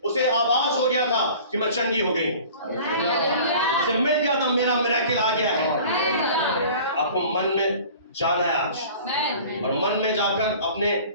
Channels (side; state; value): both; inverted; correlation -0.44